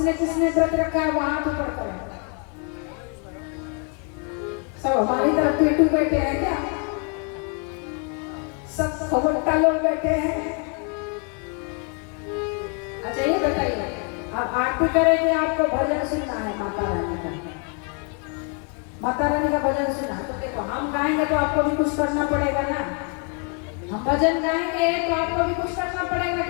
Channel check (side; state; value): right; quieter; 38.8 dB